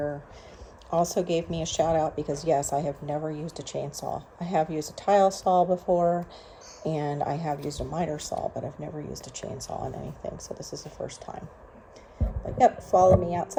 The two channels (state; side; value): identical; both; correlation 1.00